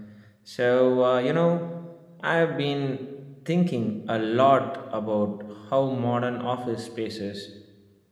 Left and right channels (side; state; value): both; identical; correlation 1.00